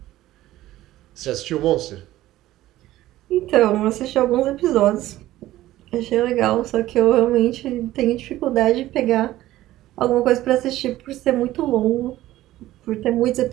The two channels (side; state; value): left; quieter; 15.3 dB